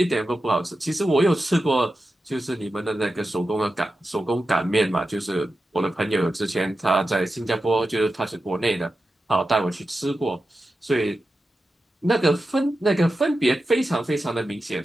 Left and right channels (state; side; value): normal; both; correlation 0.91